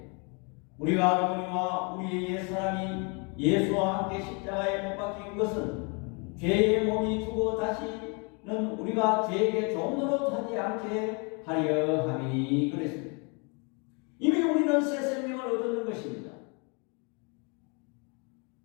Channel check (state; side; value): quieter; right; 33.8 dB